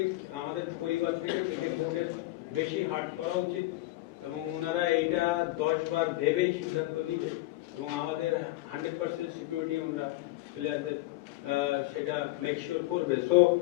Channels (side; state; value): right; quieter; 18.7 dB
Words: আমাদের পরিবার থেকে ক্রিকেট বোর্ডের বেশি হার্ট করা উচিত, এবং ওনারা এইটা 10 বার ভেবেই সিদ্ধান্ত নিবে, এবং আমাদের 100% সিকিউরিটি ওনারা প্লেয়ারদের সেটা মেক শিওর করবে। সো